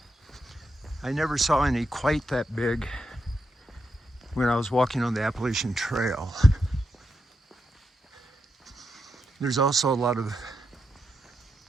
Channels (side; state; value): both; normal; correlation 0.84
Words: I never saw any quite that big when I was walking on the Appalachian Trail. There's also a lot of